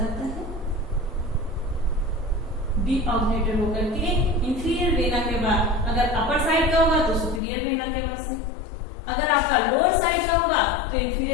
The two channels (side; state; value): right; drops out; at 7.4 s